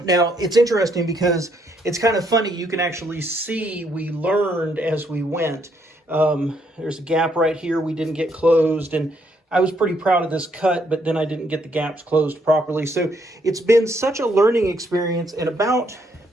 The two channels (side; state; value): both; normal; correlation 0.72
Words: Now, it's interesting because it's kind of funny. You can actually see we learned as we went. There's a gap right here we didn't get closed, and I was pretty proud of this cut, but then I didn't get the gaps closed properly. So it's been such a learning experience, and about